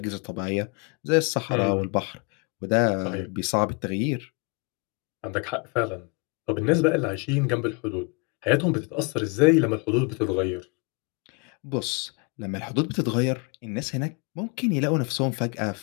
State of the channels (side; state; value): right; quieter; 31.2 dB